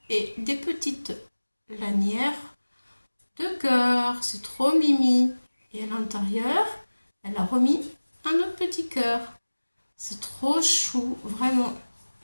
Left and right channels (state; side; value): inverted; both; correlation -1.00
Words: et des petites lanières de cœur. C'est trop mimi. Et à l'intérieur, elle a remis un autre petit cœur. C'est trop chou, vraiment.